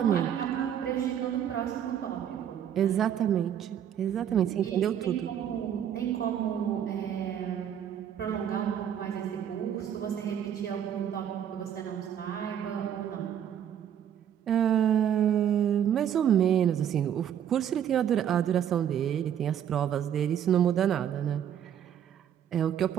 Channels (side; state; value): left; quieter; 9.5 dB